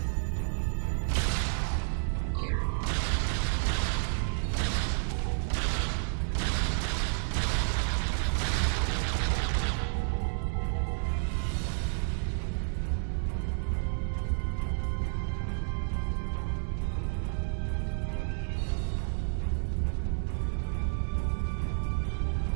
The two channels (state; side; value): silent; left; digital silence